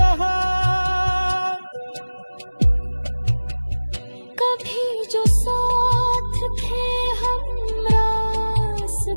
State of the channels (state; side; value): inverted; both; correlation -1.00